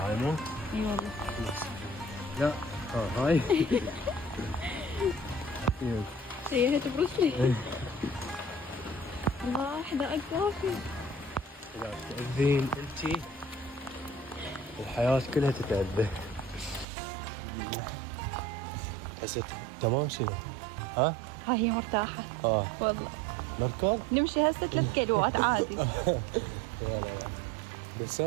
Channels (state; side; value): drops out; left; at 16.9 s